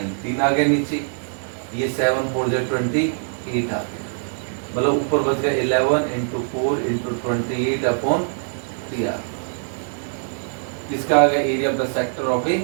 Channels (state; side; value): silent; left; digital silence